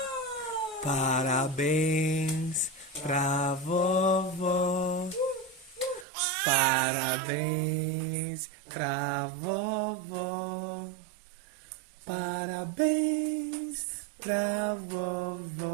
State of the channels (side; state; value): left; drops out; at 6.1 s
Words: Parabéns pra vovó. Parabéns pra vovó. Parabéns pra